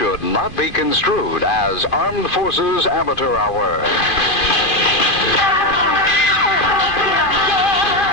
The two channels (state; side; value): late; right; 2.5 ms